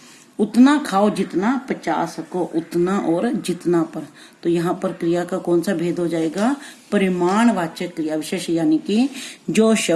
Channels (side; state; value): both; identical; correlation 1.00